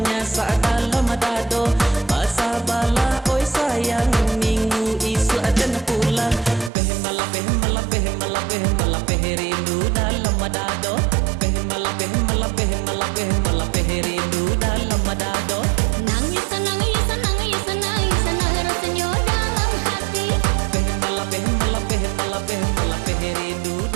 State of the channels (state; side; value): drops out; left; at 6.7 s